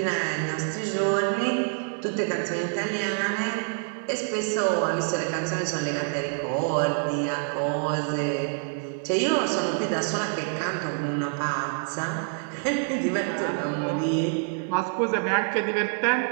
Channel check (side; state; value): left; silent; 59 dB below the other